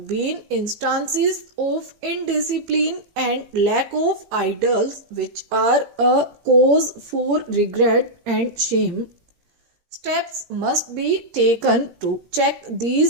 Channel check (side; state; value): left; late; 17 ms